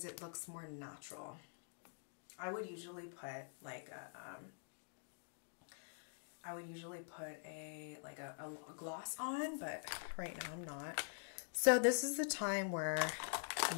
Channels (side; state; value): right; silent; digital silence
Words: it looks more natural. I would usually put like a a gloss on, but right now I'm not. So this is the time where